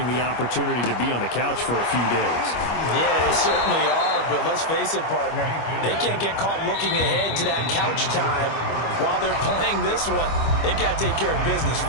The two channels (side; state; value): right; late; 25 ms